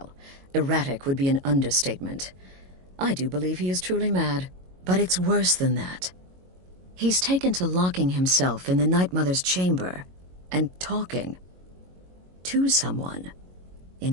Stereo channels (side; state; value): left; late; 22 ms